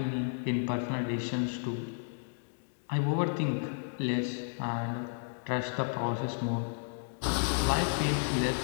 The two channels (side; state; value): right; silent; digital silence